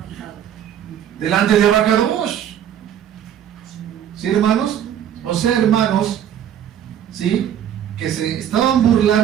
delante de Abacados. ¿Sí, hermanos? O sea, hermanos, ¿sí? Que se estaban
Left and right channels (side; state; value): left; quieter; 9.9 dB